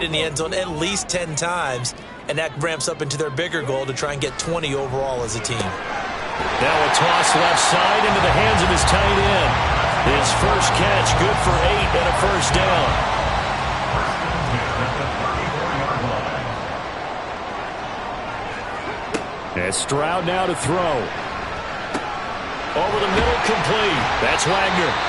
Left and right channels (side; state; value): both; identical; correlation 1.00